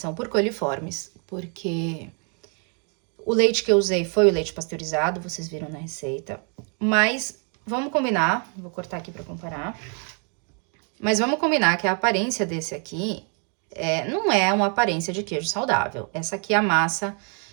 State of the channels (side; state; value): left; quieter; 39.9 dB